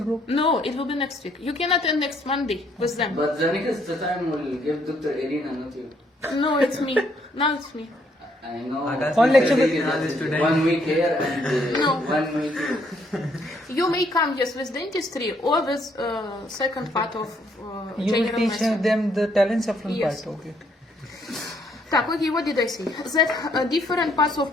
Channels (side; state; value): both; normal; correlation 0.69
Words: group. No, it will be next week. You can attend next Monday with them. But the next time will give Dr. Irina, not you. No, it's me. Now it's me. I know. Akash One lecture is with- this today. 1 week here and No. 1 week. You may come, yes, with dentistry or with second part of You will general teach medicine. them the Telencephalon Yes. part. Okay. Okay, what did I say? That different parts